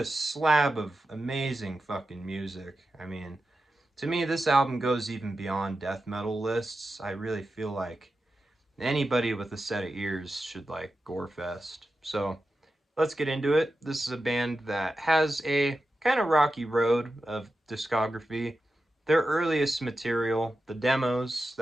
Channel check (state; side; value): normal; both; correlation 0.91